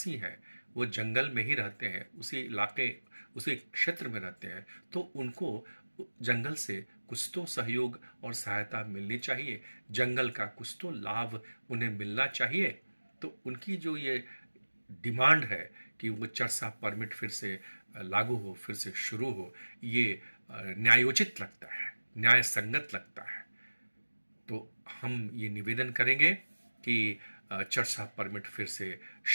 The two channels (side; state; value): both; inverted; correlation -1.00